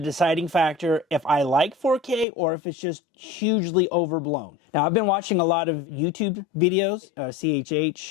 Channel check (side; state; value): right; drops out; at 2.2 s